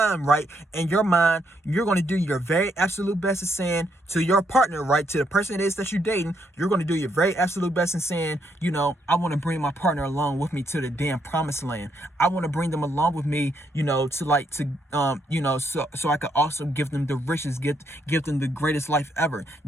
right, in your mind, you're going to do your very absolute best in saying to your partner, right, to the person it is that you're dating, you're going to do your very absolute best in saying, you know, I want to bring my partner along with me to the damn promised land. I want to bring them along with me, you know, you know, so I could also give them the richest, give them the greatest life ever.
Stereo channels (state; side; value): normal; both; correlation 0.75